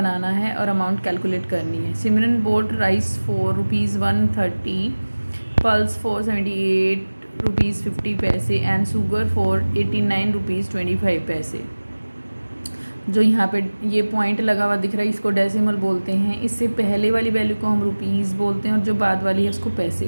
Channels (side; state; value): both; inverted; correlation -1.00